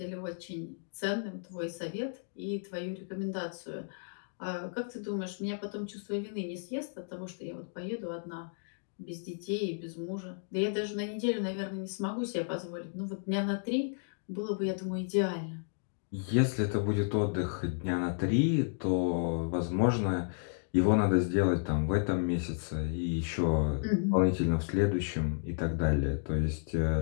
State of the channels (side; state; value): right; silent; digital silence